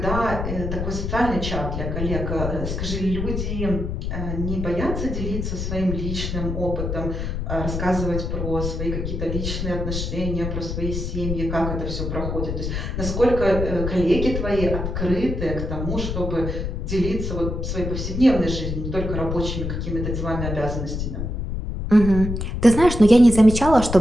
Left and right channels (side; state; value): left; noise; rumble, 3 dB below the sound